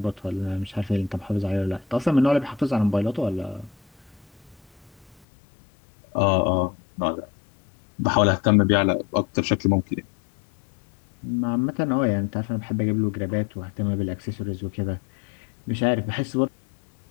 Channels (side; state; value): right; drops out; at 5.2 s